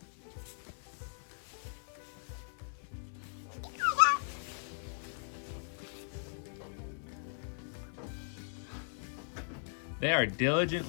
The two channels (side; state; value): right; silent; 52 dB below the other